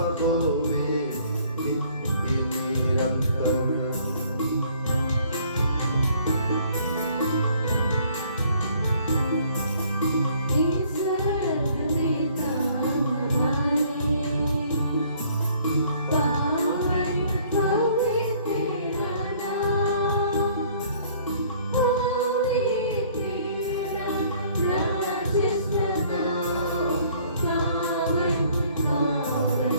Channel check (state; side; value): inverted; both; correlation -0.59